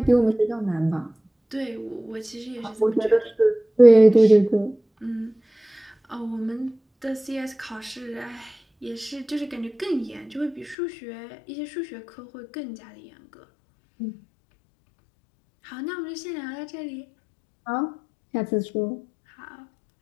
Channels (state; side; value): drops out; right; at 10.8 s